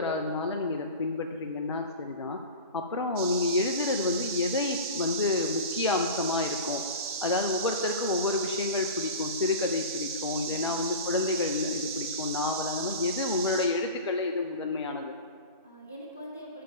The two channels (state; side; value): inverted; both; correlation -0.31